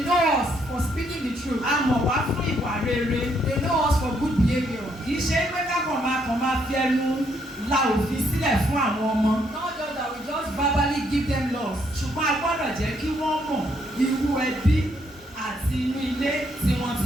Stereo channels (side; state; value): both; normal; correlation 0.72